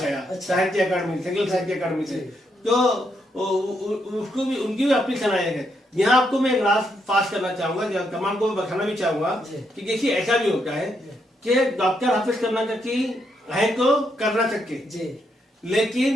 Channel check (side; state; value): both; normal; correlation 0.78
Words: साहित्य अकादमी, संगील साहित्य अकादमी से, तो उसको भी उनकी भी अपनी सलाहियत है। यहाँ आपको मैं एक राज पास करना चाहूंगा, तमाम को बताना भी चाहूंगा कि देखिए ऐसा भी होता है कि डॉक्टर हाफिज कर्नाटकी है तो कर्नाटक के,